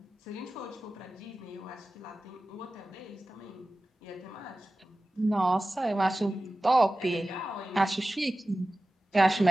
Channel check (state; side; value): normal; both; correlation 0.96